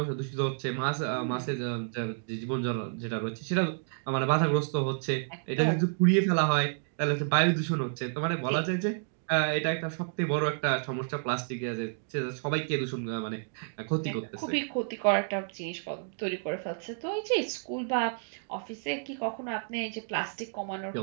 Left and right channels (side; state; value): left; silent; digital silence